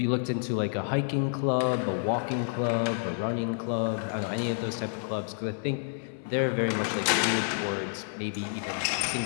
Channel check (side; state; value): right; silent; 58 dB below the other